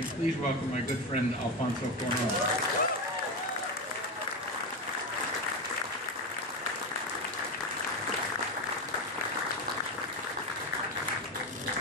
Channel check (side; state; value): both; normal; correlation 0.16